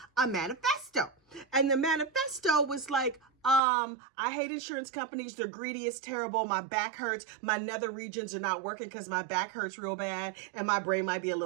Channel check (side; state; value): left; drops out; at 3.6 s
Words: a manifesto. And the manifesto was like, I hate insurance companies. They're greedy. It's terrible. My back hurts. My nether regions are not working because my back hurts real bad and my brain might be a